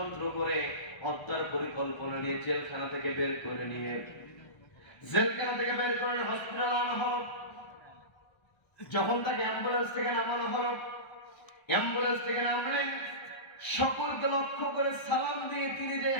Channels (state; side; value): late; right; 1.3 ms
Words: করে হত্যার পরিকল্পনা নিয়ে জেলখানা থেকে বের করে নিয়ে হসপিটাল আনা হলো। যখন তাকে অ্যাম্বুলেন্স থেকে নামানো হলো, অ্যাম্বুলেন্স থেকে নামলেন, সকলকে লক্ষ্য করে সালাম দিয়ে তিনি যে